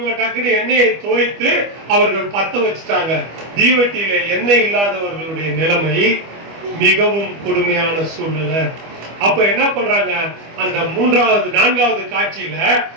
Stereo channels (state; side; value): late; left; 25 ms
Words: டக்குனு எண்ணெயை தோய்த்து அவர்கள் பத்த வச்சுட்டாங்க. தீவெட்டியில எண்ணெய் இல்லாதவர்களுடைய நிலைமை மிகவும் கொடுமையான சூழ்நிலை. அப்ப என்ன பண்றாங்க? அந்த 3வது 4வது காட்சியில